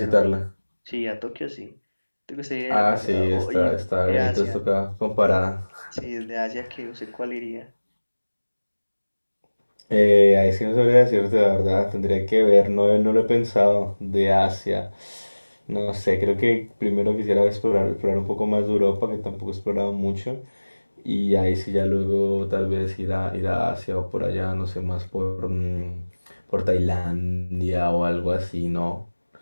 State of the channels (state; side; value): inverted; both; correlation -1.00